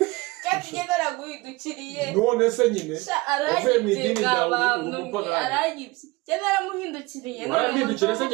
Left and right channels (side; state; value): left; quieter; 22.8 dB